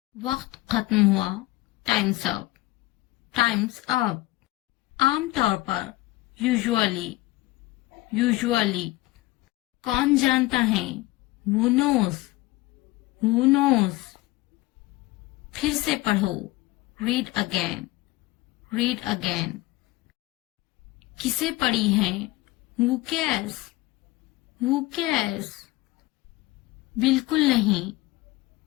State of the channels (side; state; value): right; quieter; 19.0 dB